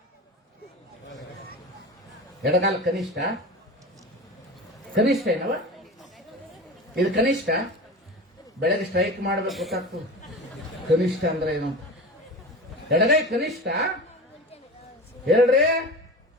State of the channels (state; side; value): normal; both; correlation 0.31